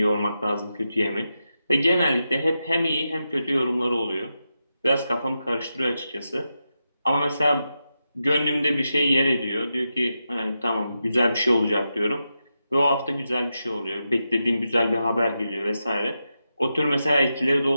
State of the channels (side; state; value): both; inverted; correlation -0.88